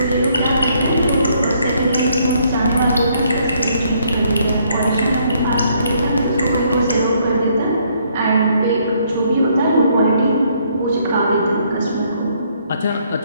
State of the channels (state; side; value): inverted; both; correlation -0.68